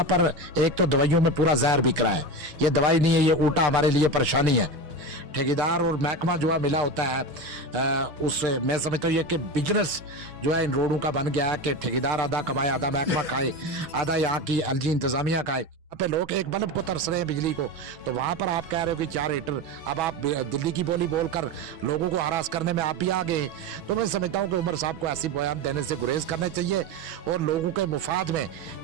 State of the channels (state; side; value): late; left; 6.2 ms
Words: पर एक तो दवाइयों में पूरा जहर बिक रहा है, ये दवाई नहीं है, ये उल्टा हमारे लिए परेशानी है। ठेकेदार और महकमा जो है मिला होता है उससे मैं समझता हूँ ये कि बिजनेस जो है इन रोडों का बन गया है कि ठेकेदार आधा कमाए, आधा महकमा खाए, आधा यहाँ की एलजी इंतजामिया खाए। पे लोग एक बल्ब को तरस रहे हैं बिजली को, तो वहां पर आप कह रहे हो कि 4 हीटर। अब आप दिल्ली की बोली बोलकर लोगों को हरास करने में आप भी आ गए। तो मैं समझता हूं कि उमर साहब को ऐसी बयान देने से गुरेज करने चाहिए और लोगों के मुफाद में